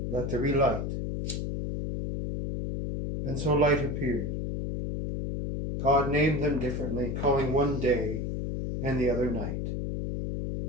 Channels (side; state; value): left; noise; hum, 3 dB below the sound